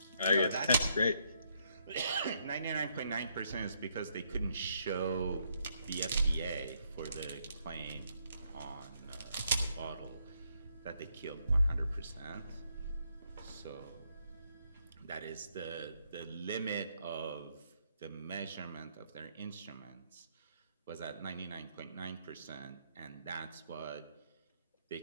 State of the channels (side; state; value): both; inverted; correlation -0.74